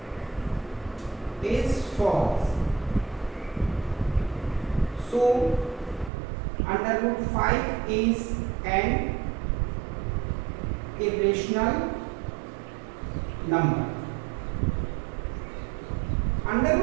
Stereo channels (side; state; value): left; drops out; at 6.1 s